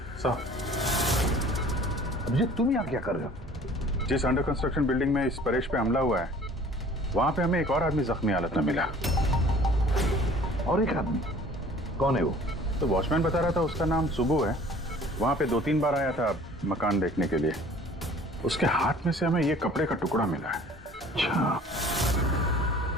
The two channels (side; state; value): both; normal; correlation 0.50